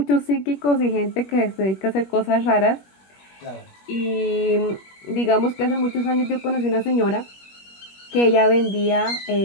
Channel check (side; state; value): right; late; 21 ms